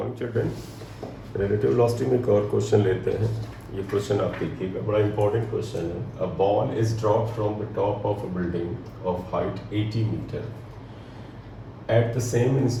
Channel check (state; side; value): identical; both; correlation 1.00